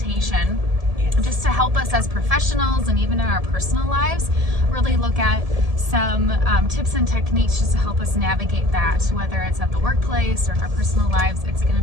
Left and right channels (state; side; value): late; left; 1.7 ms